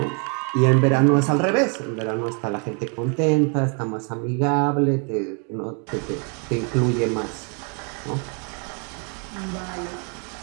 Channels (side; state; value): left; quieter; 37.8 dB